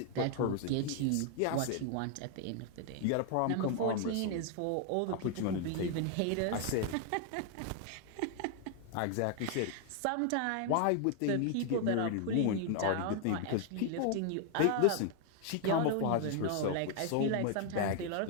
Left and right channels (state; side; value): different; both; correlation 0.00